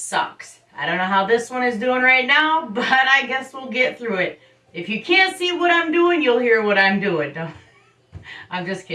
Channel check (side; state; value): both; identical; correlation 1.00